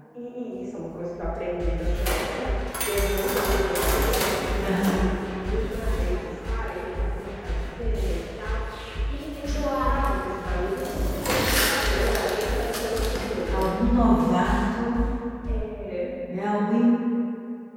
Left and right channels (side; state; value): both; identical; correlation 1.00